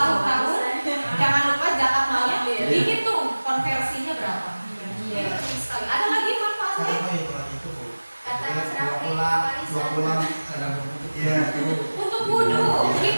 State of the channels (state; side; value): inverted; both; correlation -1.00